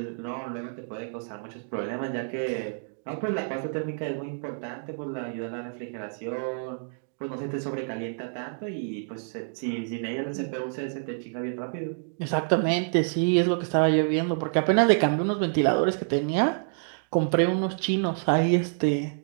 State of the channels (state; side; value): silent; left; 60 dB below the other